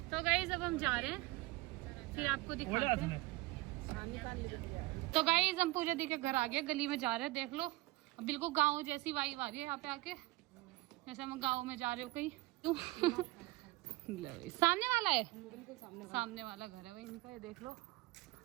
तो गाइस अब हम जा रहे हैं, फिर आपको दिखाते हैं। तो गाइस हम पूजा दी के घर आ गए, गली में जा रहे हैं, देख लो बिल्कुल गांव जैसी वाइब आ रही है यहाँ पे आके, जैसे हम गांव में जा रहे हो कहीं। सामने वाला है, सामने वाला घर है वही इनका, ये देख लो।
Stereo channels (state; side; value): quieter; left; 20.2 dB